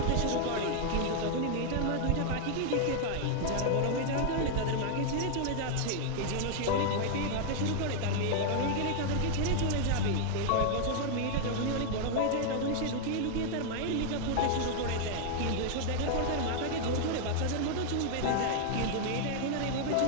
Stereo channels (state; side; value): different; both; correlation -0.01